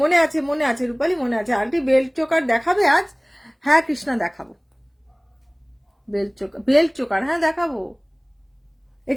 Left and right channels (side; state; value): both; identical; correlation 1.00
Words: মনে আছে রূপালি, মনে আছে। আন্টি বেল্ট চোকার দেখাবে আজ? হ্যাঁ কৃষ্ণা দেখাবো, বেল্ট চোকার হ্যাঁ দেখাবো।